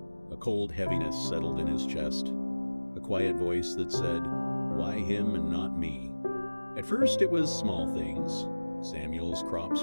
a cold heaviness settled in his chest, a quiet voice that said, "Why him and not me?" At first it was small things. Samuel's crops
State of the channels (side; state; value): both; inverted; correlation -1.00